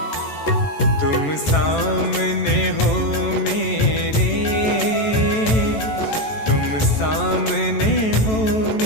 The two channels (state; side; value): late; right; 14 ms